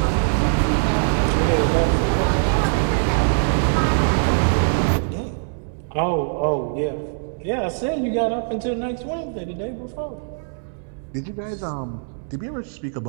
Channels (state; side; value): silent; left; digital silence